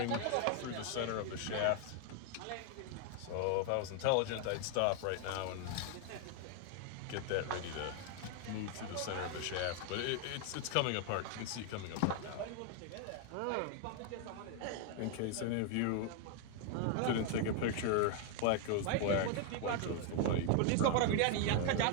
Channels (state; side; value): different; both; correlation 0.00